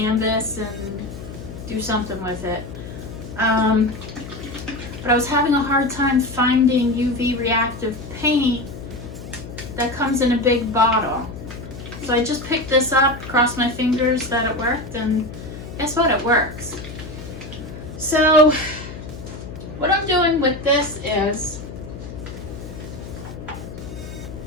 and do something with it. But I was having a hard time finding UV reactive paint that comes in a big bottle. So I just picked this up, crossed my fingers that it worked, and guess what? It works. So what I'm doing with this is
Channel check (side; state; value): left; noise; hum, 13 dB below the sound